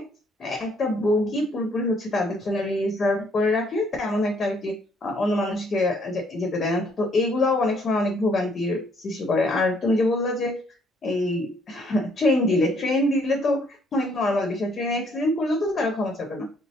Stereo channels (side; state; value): both; normal; correlation 0.66